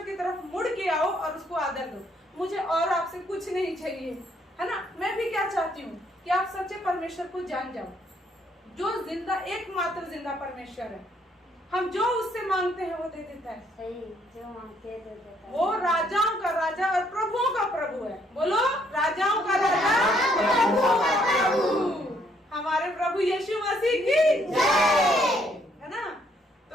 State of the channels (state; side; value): normal; both; correlation 0.69